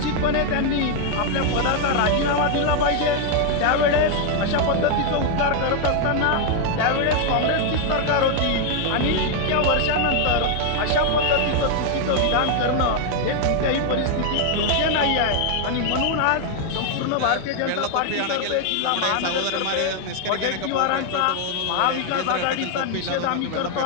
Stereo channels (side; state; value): both; different; correlation 0.00